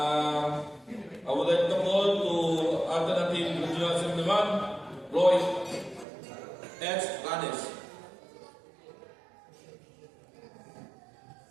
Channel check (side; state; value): left; drops out; at 6.1 s